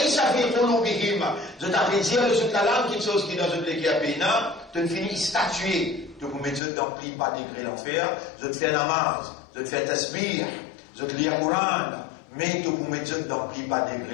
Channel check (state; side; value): drops out; right; at 6.6 s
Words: fi qulubihim. Je t'appelle dire, sur la langue, quelque chose qui dans une écrit à peine, de finir statuer, de vous mettre dans le pas degré l'enfer, de te faire namaz, de te faire tasbih, de te lire Coran, mais de vous mettre dans le pas